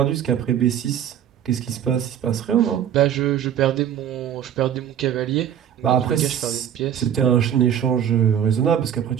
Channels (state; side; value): quieter; left; 9.6 dB